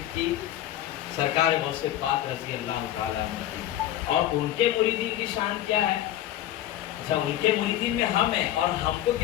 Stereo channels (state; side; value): quieter; right; 12.9 dB